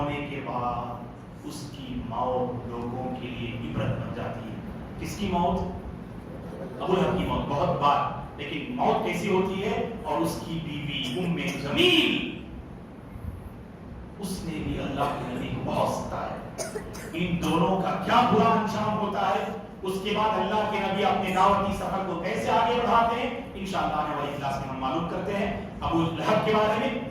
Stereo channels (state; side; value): identical; both; correlation 1.00